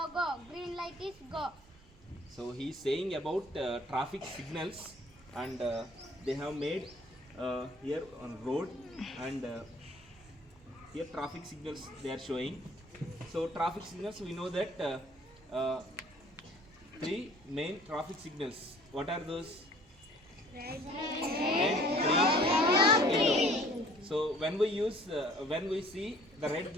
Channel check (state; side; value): normal; both; correlation 0.53